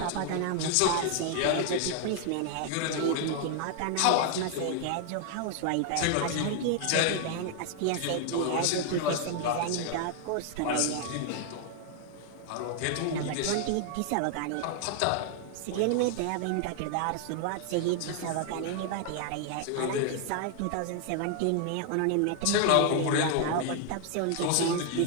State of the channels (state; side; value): different; both; correlation 0.00